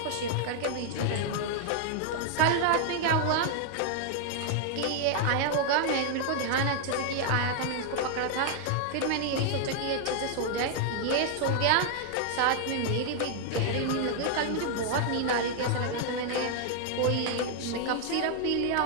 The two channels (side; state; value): both; different; correlation 0.00